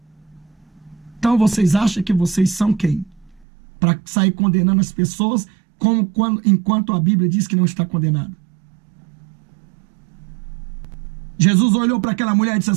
Então vocês acham que vocês são quem? Para sair condenando as pessoas, enquanto a Bíblia diz que não está condenado. Jesus olhou para aquela mulher e disse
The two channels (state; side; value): drops out; left; at 3.5 s